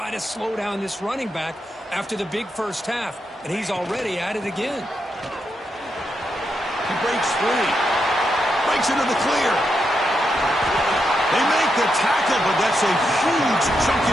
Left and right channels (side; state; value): both; normal; correlation 0.83